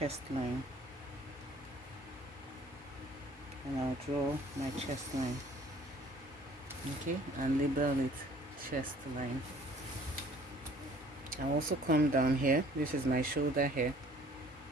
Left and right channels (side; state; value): both; normal; correlation 0.54